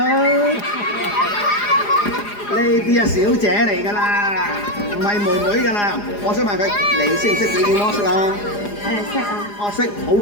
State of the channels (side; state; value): right; late; 4.9 ms